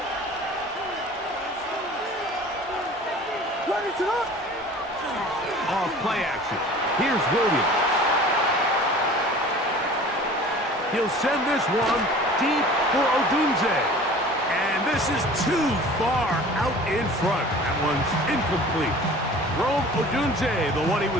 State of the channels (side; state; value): both; normal; correlation 0.44